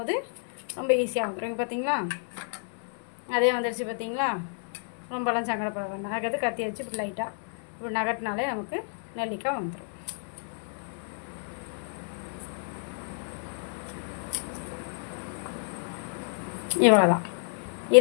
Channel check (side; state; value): right; silent; 58 dB below the other